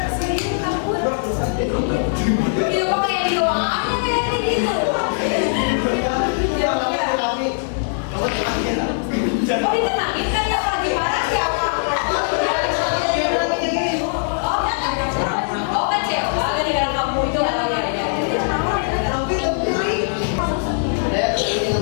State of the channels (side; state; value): right; silent; 65 dB below the other